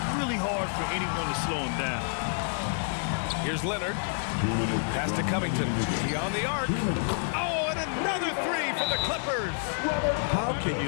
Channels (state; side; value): silent; right; digital silence